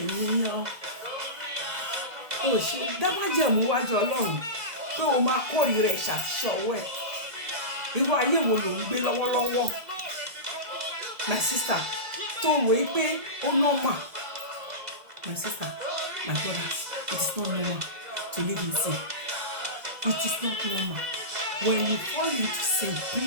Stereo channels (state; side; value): late; left; 1.8 ms